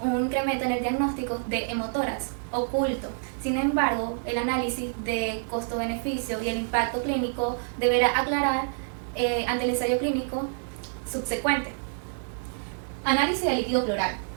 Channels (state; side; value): silent; left; digital silence